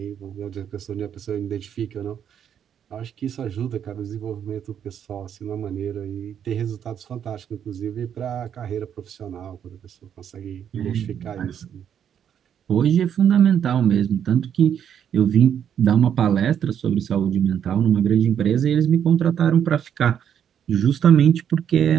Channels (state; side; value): quieter; left; 8.8 dB